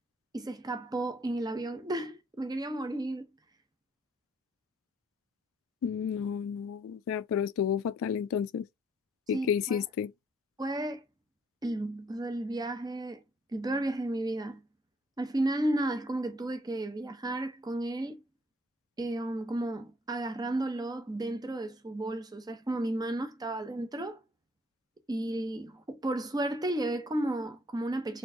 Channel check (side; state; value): both; normal; correlation 0.64